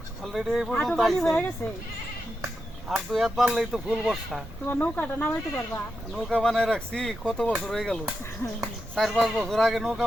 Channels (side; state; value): both; normal; correlation 0.87